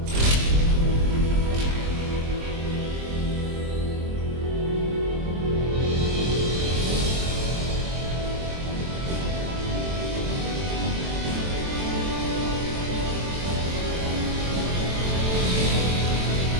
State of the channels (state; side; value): late; left; 23 ms